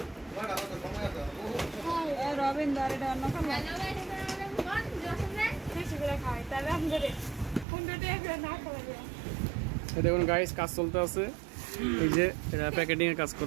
দেখুন গাইস, কাজ চলতে আছে। এই যে এটা প্যাকেটিং এর কাজ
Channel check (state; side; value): drops out; left; at 7.7 s